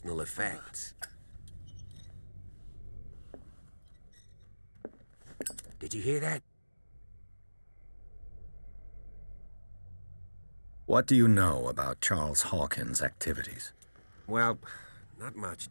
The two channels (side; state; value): both; inverted; correlation -1.00